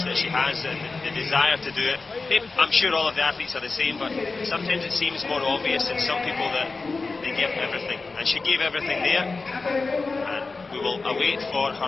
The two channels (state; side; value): quieter; right; 3.9 dB